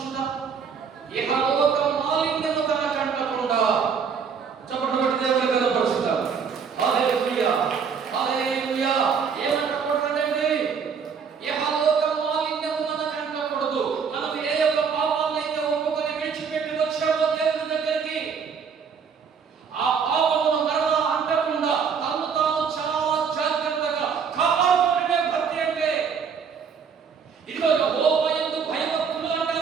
ఇహలోక మాలిన్యము తన కంటకుండా చప్పట్లు కొట్టి దేవుని కనపరుచుతారు. హల్లెలూయా, హల్లెలూయా. ఏమంటకూడదండి? ఇహలోక మాలిన్యము మన కంటకూడదు. మనం ఏ యొక్క పాపాలైతే ఒప్పుకొని విడిచిపెట్టి వచ్చామో దేవుని దగ్గరికి, ఆ పాపమును మరలా అంటకుండా తను తాను చాలా జాగ్రత్తగా కాపాడుకునే భక్తి అంటే. ఇదిగో యెహోవా యందు భయభక్తులు అంటే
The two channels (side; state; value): left; quieter; 6.4 dB